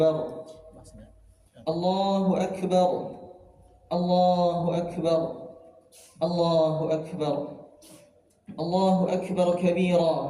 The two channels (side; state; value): both; identical; correlation 1.00